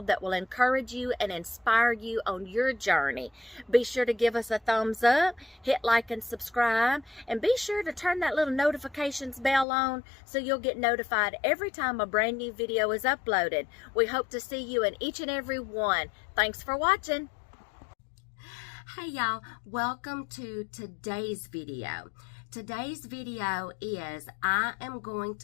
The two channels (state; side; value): drops out; right; at 9.7 s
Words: that will encourage you and inspire you on your journey. Be sure to give us a thumbs up, hit like and subscribe, and be sure to turn that little notifications bell on so you'll get notified every time a brand new video is uploaded. We hope to see you in each and every one. Thanks for watching. Hey y'all, welcome to today's video. Today's video is I am going